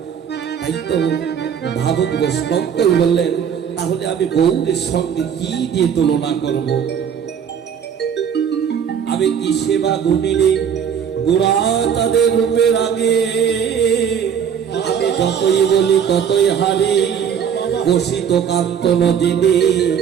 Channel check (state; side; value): quieter; left; 7.9 dB